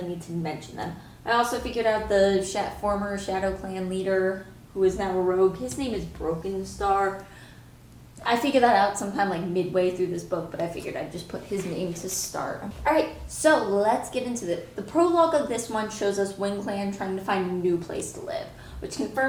need to mention them. I also figured out the former Shadow Clan leader, who is now a rogue. His name is Broken Star. I figured that out sometime like midway through this book, but I figured I'd just put his name to start. Alright, so let's get into it. The prologue of this one shows us Wind Clan trying to find a new place to live, which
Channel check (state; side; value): identical; both; correlation 1.00